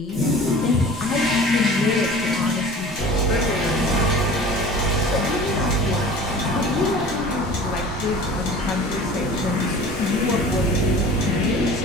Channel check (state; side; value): normal; both; correlation 0.42